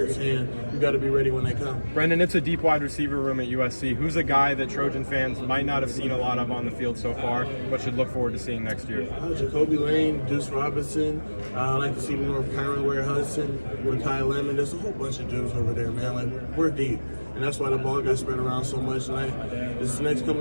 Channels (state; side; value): inverted; both; correlation -1.00